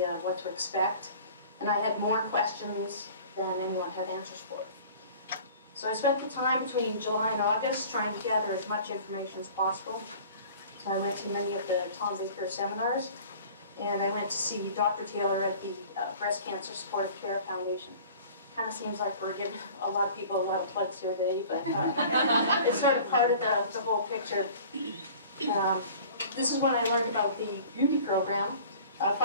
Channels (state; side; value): inverted; both; correlation -0.45